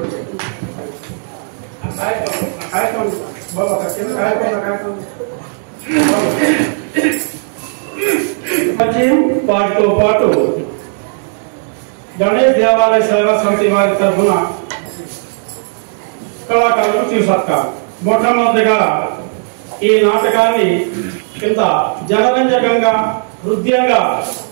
పాటుతో పాటు గణేష్ దేవాలయ సేవా సమితి వారి తరఫున కళాకారులు తీసుకొస్తారు. మొట్టమొదటిగా ఈ నాటకాన్ని ఇంత జనరంజకంగా హృదయంగా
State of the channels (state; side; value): silent; left; digital silence